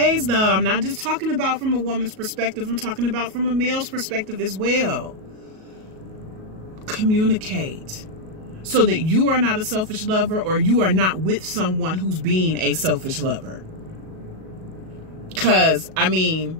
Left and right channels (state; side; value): late; left; 37 ms